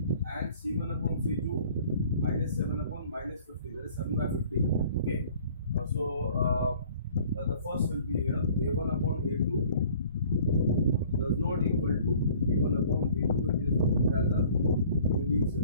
and c1 upon c2, minus 7 upon minus 50, that is 7 by 50. Okay, so the first will be here, a1 upon a2 does not equal to b1 upon b2, it is as a unique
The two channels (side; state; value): both; inverted; correlation -0.52